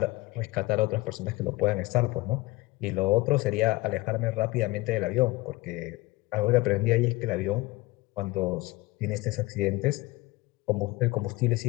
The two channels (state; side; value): quieter; right; 21.3 dB